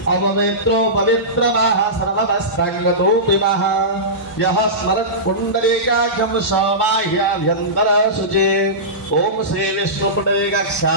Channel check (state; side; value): normal; both; correlation -0.19